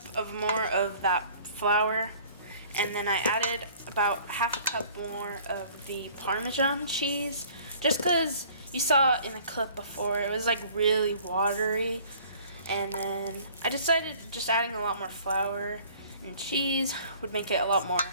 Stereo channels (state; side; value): inverted; both; correlation -0.53